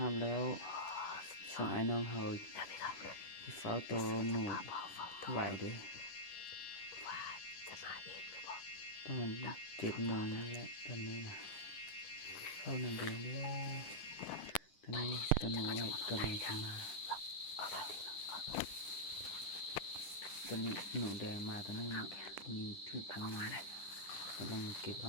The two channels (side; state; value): right; late; 10 ms